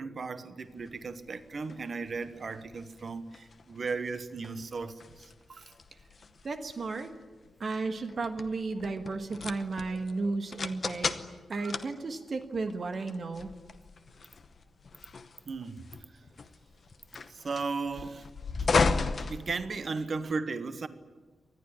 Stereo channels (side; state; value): both; normal; correlation 0.87